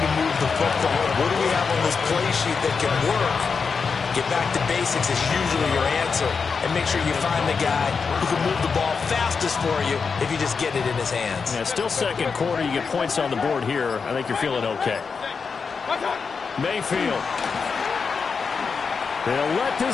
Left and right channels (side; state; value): right; quieter; 5.4 dB